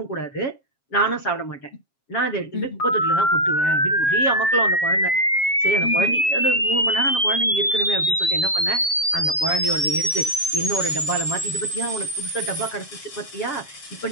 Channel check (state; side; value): late; right; 7.4 ms